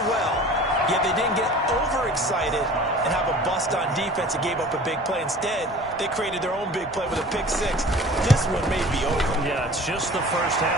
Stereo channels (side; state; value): both; normal; correlation 0.43